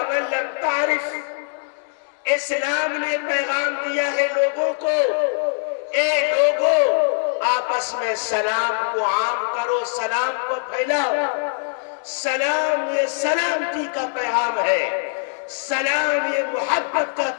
لم تعرف. اسلام نے پیغام دیا ہے لوگوں کو، اے لوگوں آپس میں سلام کو عام کرو، سلام کو پھیلاؤ. سلام یہ سلامتی کا پیغام ہے، سلام یہ محبت کا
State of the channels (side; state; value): right; silent; digital silence